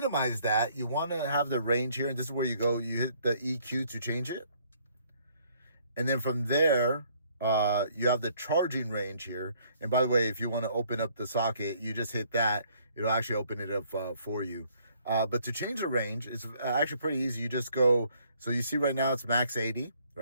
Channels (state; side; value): inverted; both; correlation -0.63